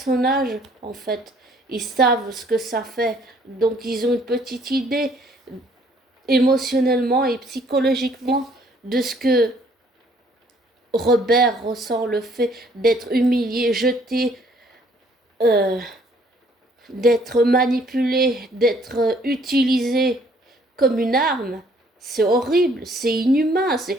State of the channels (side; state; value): both; normal; correlation 0.62